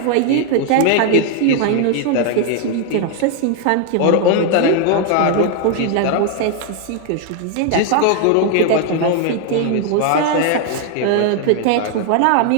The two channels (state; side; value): different; both; correlation 0.00